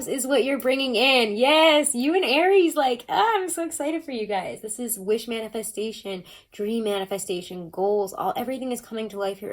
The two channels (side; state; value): both; identical; correlation 1.00